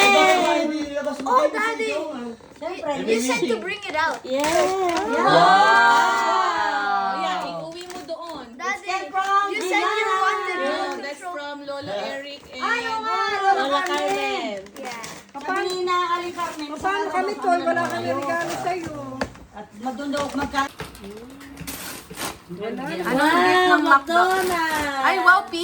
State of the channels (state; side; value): identical; both; correlation 1.00